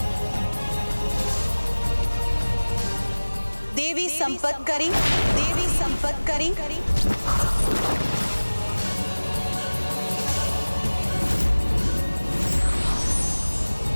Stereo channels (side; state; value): both; inverted; correlation -1.00